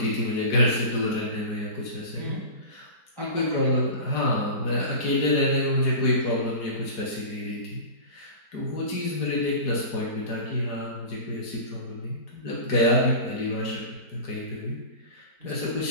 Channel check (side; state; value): right; late; 4.8 ms